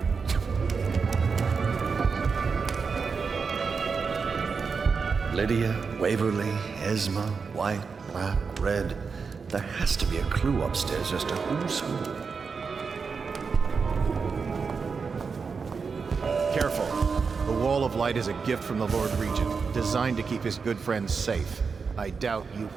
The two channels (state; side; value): quieter; left; 5.3 dB